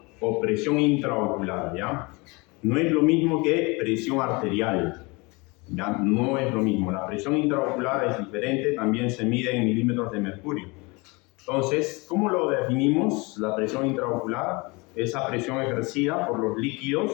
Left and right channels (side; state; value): right; quieter; 26.6 dB